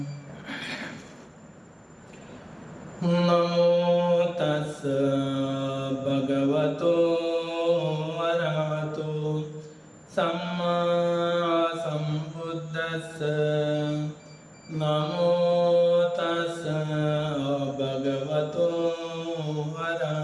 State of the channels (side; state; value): both; identical; correlation 1.00